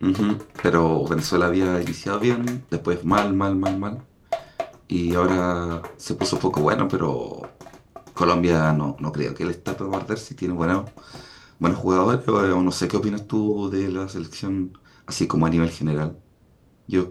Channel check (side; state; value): both; identical; correlation 1.00